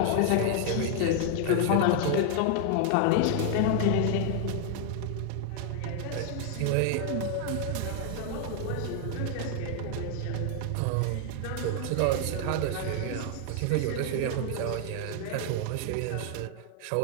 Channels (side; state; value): both; different; correlation 0.00